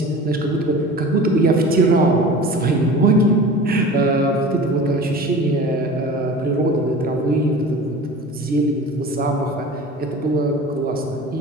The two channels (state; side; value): normal; both; correlation 0.37